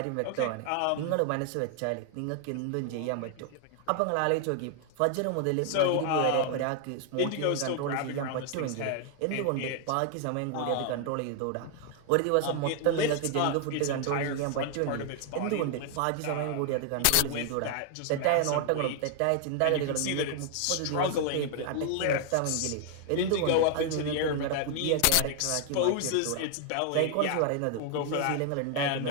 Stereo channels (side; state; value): both; different; correlation 0.00